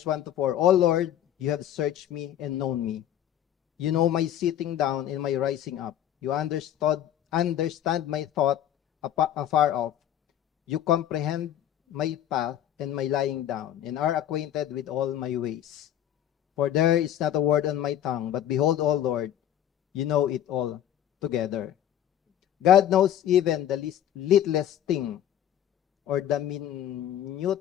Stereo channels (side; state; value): right; quieter; 11.1 dB